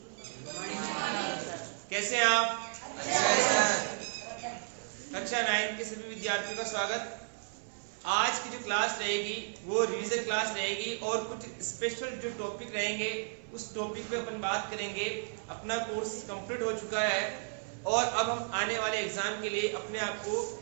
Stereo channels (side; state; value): left; silent; digital silence